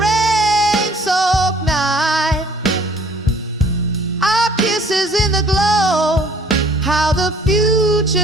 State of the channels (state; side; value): normal; both; correlation 0.56